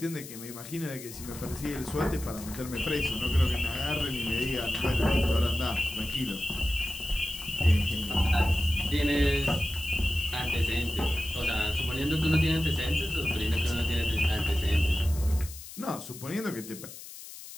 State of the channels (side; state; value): left; noise; hiss, 14 dB below the sound